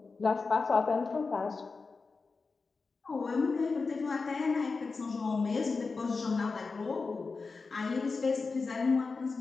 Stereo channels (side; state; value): right; quieter; 4.3 dB